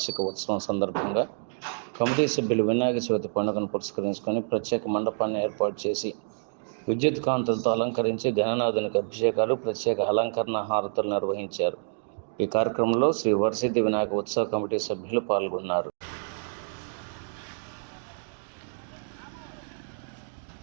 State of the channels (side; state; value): left; silent; digital silence